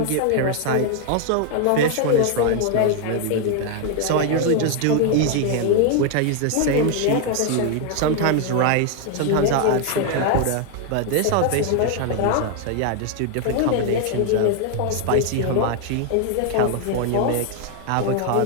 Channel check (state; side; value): different; both; correlation 0.00